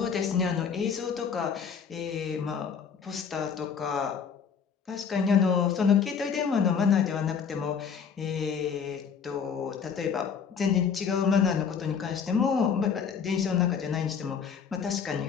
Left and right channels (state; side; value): quieter; right; 6.7 dB